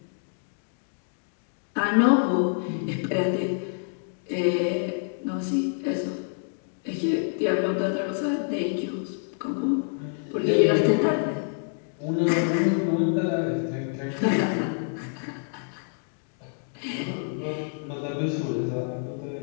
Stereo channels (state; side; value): silent; right; digital silence